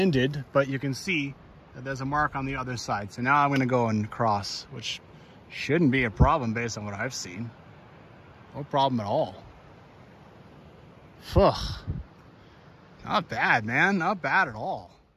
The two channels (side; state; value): both; identical; correlation 1.00